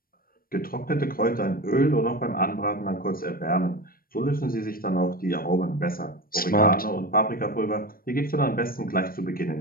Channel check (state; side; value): late; right; 0.43 ms